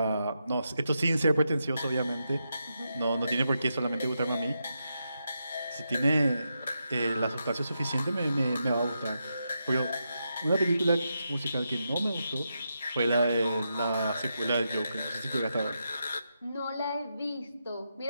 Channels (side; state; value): both; inverted; correlation -0.85